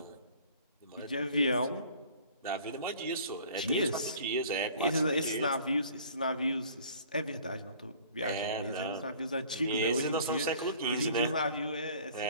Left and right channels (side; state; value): both; inverted; correlation -0.50